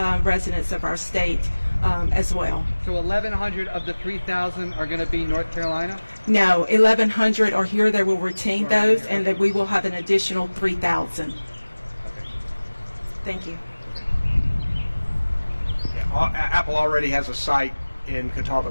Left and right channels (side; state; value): both; inverted; correlation -1.00